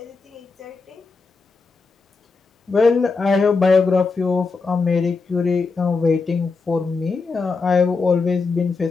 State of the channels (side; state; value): right; quieter; 4.4 dB